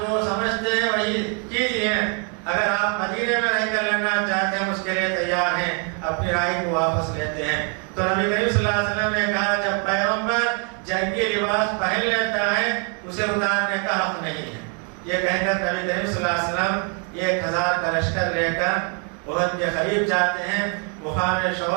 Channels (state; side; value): quieter; left; 39.6 dB